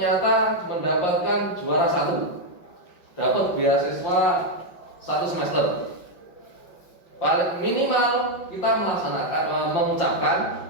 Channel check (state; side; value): late; right; 5.5 ms